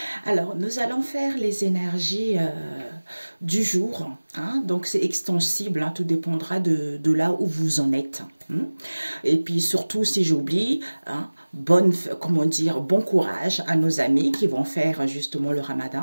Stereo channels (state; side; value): inverted; both; correlation -1.00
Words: Alors nous allons faire les énergies du jour, hein? Donc c'est extensible, hein, tout dépendra de là où vous en êtes. Hein? Et puis surtout si j'oublie, hein, comment dire, bon courage à nos amis qui vont faire justement le ramadan